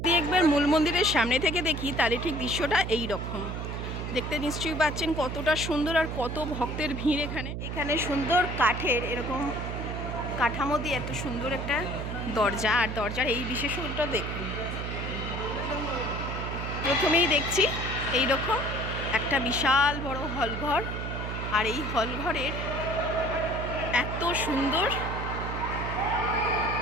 একবার মূল মন্দিরের সামনে থেকে দেখি তাহলে ঠিক দৃশ্যটা এই রকম দেখতে নিশ্চয়ই পাচ্ছেন কতটা সুন্দর, আর কত ভক্তের ভিড় এখানে সুন্দর কাঠের এরকম কাঠামো দিয়ে এত সুন্দর একটা দরজা, আর দরজার এই বিশেষত্বটা দেখুন। প্রথমেই দেখছি এই রকম একটা বিশাল বড় হলঘর, আর এই হলঘরের এত সুন্দর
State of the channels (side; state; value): right; noise; hum, 4 dB below the sound